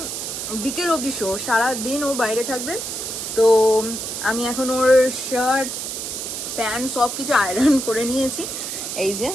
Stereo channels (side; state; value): right; noise; hiss, 5 dB below the sound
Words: বিকেল অবধি শো, সারাদিন ও বাইরে থাকবে। তো আমি এখন ওর শার্ট প্যান্ট সবকিছু আয়রন করে নিয়েছি। এই যে